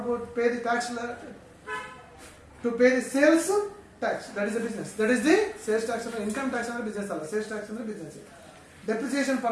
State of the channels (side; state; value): both; identical; correlation 1.00